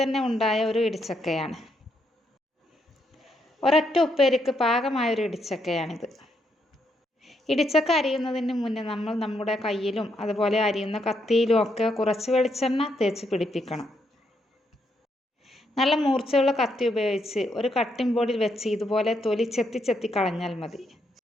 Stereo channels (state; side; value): normal; both; correlation 0.77